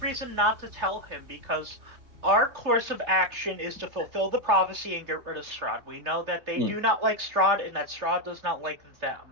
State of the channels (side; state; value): left; late; 3.3 ms